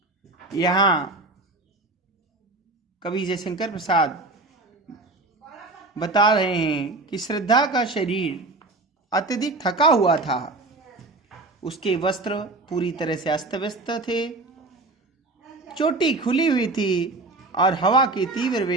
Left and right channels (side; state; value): left; quieter; 3.2 dB